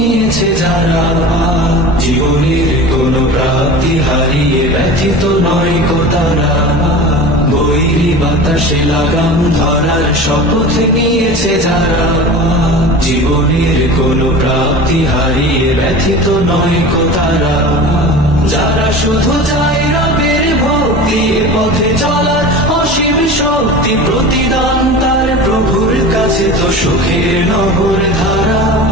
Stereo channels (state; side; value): normal; both; correlation 0.35